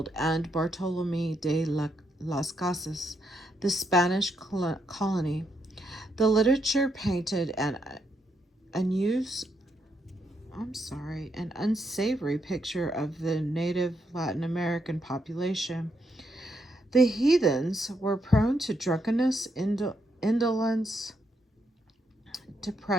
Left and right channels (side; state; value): both; normal; correlation 0.78